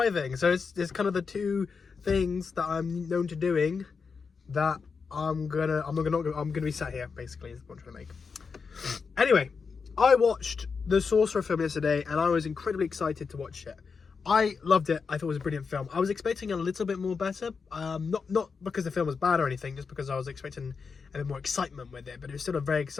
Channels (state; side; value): quieter; right; 5.3 dB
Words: so it's kind of the two things that I'm known to doing that I'm gonna be sat here. Basically, is what I'm trying to make. Anyway, I watched the Sorcerer film yesterday, and I was incredibly excited to watch it. I loved it. I thought it was a brilliant film. I was expecting a little bit more better. Not because the film was bad or anything, just because I was expecting a bit more excitement with it. But it was still a very